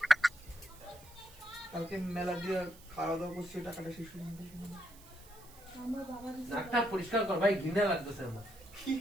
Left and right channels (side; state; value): right; noise; hiss, 22 dB below the sound